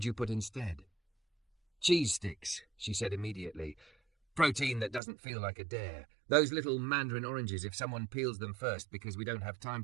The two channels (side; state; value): left; drops out; at 5.0 s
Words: you put instead?" "Cheese sticks," she said immediately. Protein that doesn't feel like a dare. Those little mandarin oranges if someone peels them first because we don't have time